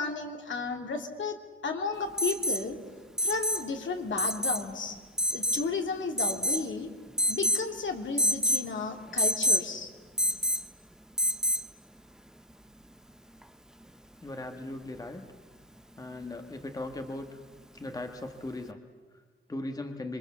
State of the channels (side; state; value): both; normal; correlation -0.01